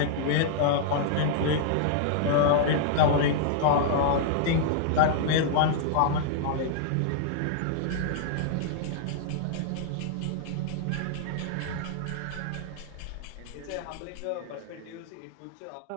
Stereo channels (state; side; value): different; both; correlation -0.01